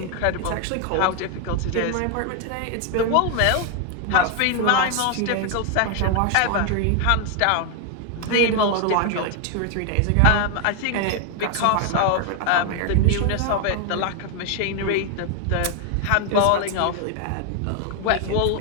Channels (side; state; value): both; different; correlation 0.00